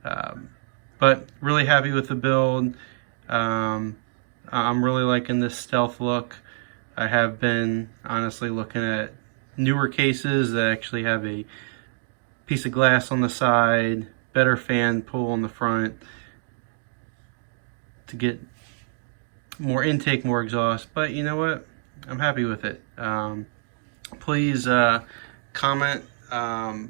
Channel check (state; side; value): silent; left; digital silence